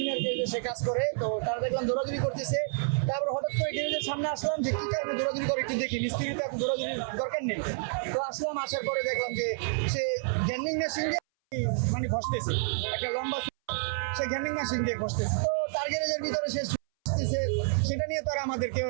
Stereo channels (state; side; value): silent; left; 58 dB below the other